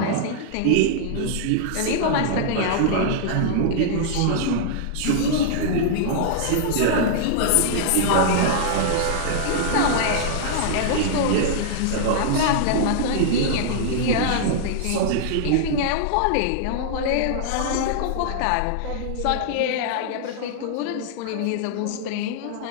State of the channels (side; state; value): both; different; correlation -0.01